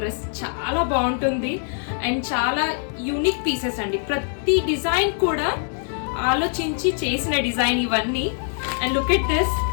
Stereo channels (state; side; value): silent; right; 57 dB below the other